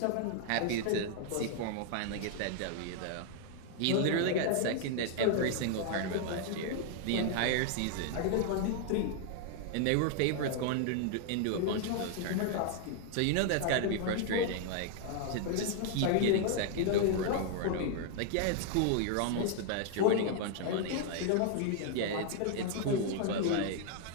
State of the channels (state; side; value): different; both; correlation 0.00